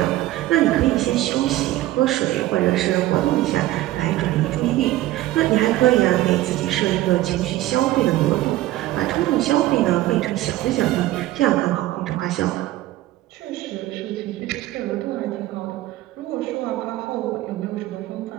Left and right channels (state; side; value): quieter; left; 15.8 dB